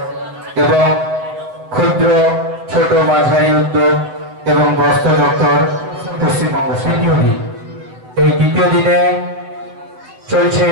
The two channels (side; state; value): left; late; 8.2 ms